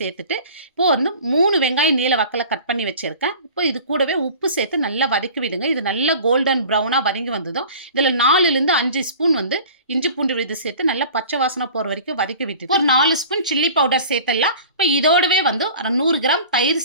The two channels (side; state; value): both; inverted; correlation -0.42